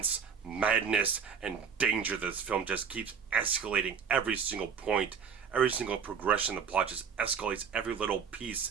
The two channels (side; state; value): left; quieter; 6.5 dB